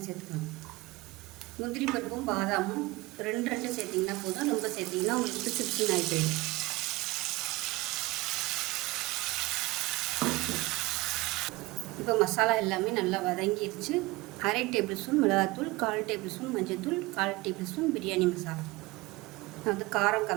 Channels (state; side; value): quieter; left; 21.7 dB